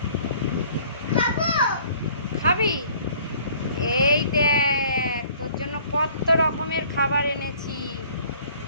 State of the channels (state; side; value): inverted; both; correlation -0.55